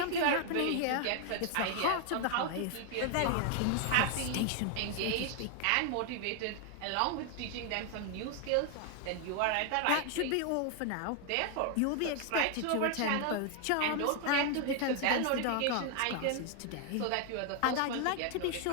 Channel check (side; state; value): both; different; correlation 0.00